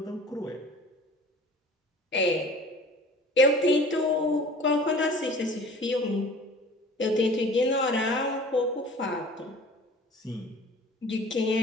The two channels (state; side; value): normal; both; correlation 0.45